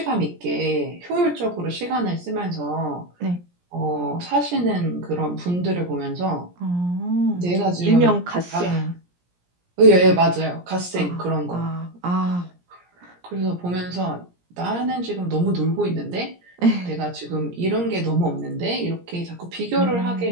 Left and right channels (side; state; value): left; late; 17 ms